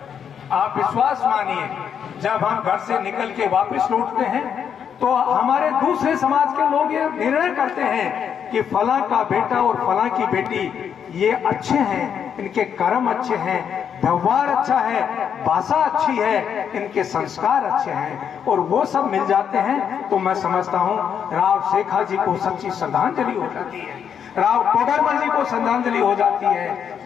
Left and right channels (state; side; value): quieter; right; 7.9 dB